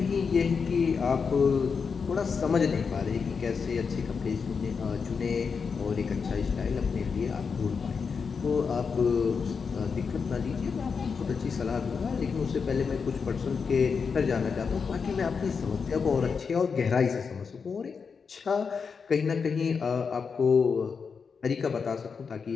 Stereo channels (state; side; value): quieter; right; 5.6 dB